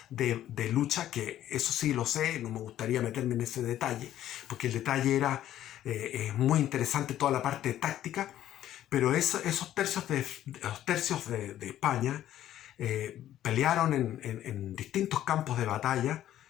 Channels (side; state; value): right; quieter; 12.3 dB